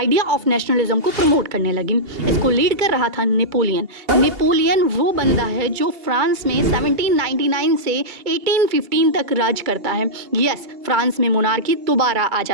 ऑफ नेशनलिज्म को प्रमोट करने लगी। इसको लीड कर रहा था नेपोलियन। नेपोलियन वो बंदा है जो फ्रांस में 1799 से 1815 तक राज करता है। यस, फ्रांस में मोनार्की दोबारा आ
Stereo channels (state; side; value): late; left; 2.3 ms